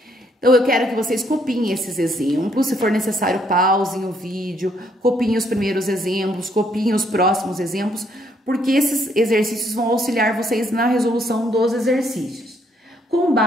Então, eu quero que vocês copiem esses exemplos, se for necessário, pausem o vídeo, copiem os primeiros exemplos, copiem os próximos exemplos, porque esses exercícios vão auxiliar vocês na resolução dos exercícios. Com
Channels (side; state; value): both; normal; correlation 0.70